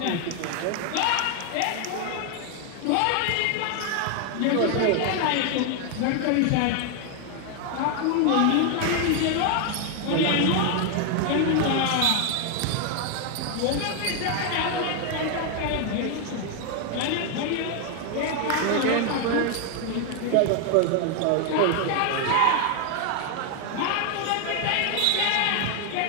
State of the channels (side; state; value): both; different; correlation 0.01